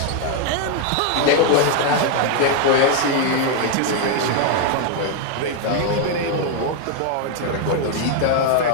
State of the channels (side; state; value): both; different; correlation 0.00